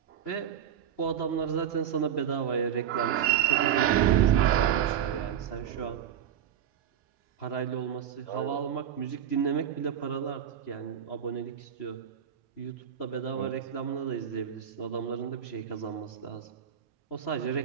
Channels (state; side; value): quieter; left; 9.3 dB